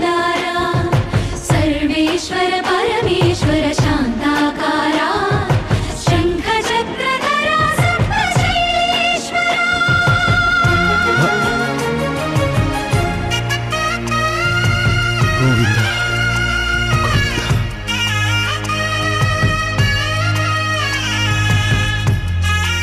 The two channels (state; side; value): identical; both; correlation 1.00